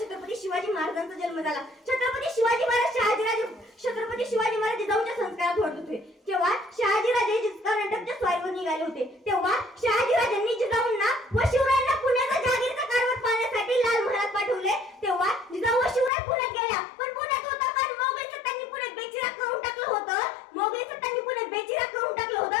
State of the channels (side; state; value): right; drops out; at 16.1 s